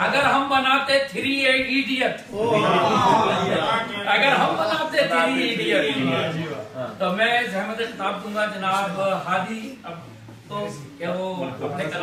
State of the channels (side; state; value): both; identical; correlation 1.00